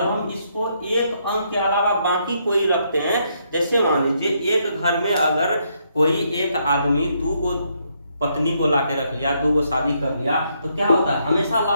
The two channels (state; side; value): inverted; both; correlation -0.75